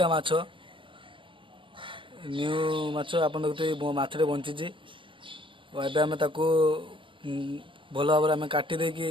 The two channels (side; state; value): left; late; 0.25 ms